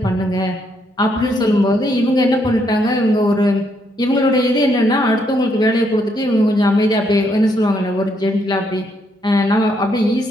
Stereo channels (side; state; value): both; normal; correlation 0.74